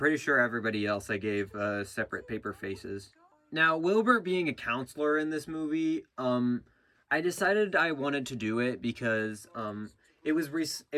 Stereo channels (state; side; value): identical; both; correlation 1.00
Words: sure everybody else I gave separate paper faces. Now, Wilbert being a counselor in this movie, I decided I wanted to do it because it was